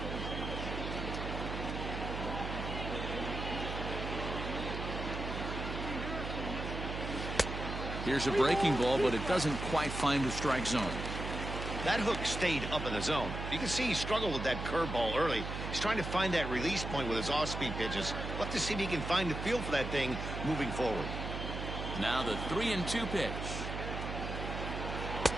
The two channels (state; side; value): noise; right; hum, 5 dB below the sound